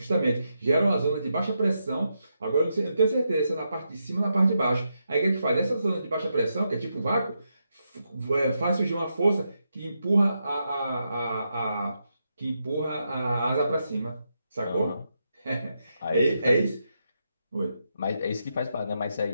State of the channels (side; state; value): both; inverted; correlation -0.84